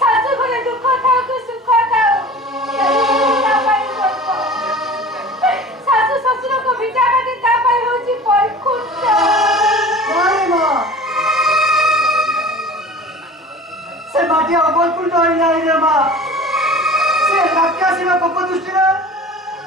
सासु घरे दुख था को सुख था सासु ससुर को भिटा बाटे ता पाई होची परखुट अरे मां से माटी अबलपुर डरी नहीं रे मां से राक्षसी में पप दृष्टि रे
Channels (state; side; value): normal; both; correlation 0.40